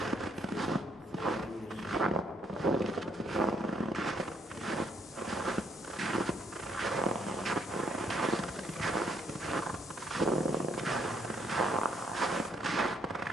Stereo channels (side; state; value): both; normal; correlation 0.70